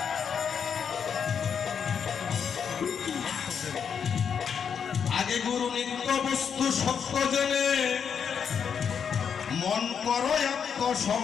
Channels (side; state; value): right; quieter; 7.1 dB